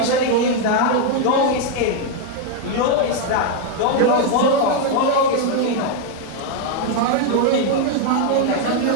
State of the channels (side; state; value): both; different; correlation 0.01